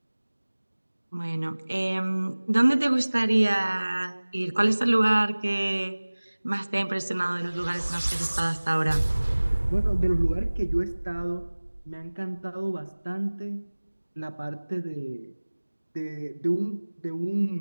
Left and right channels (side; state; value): both; inverted; correlation -1.00